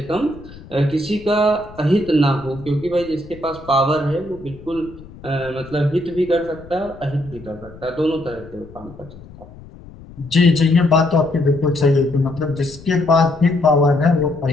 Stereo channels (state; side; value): noise; left; rumble, 19 dB below the sound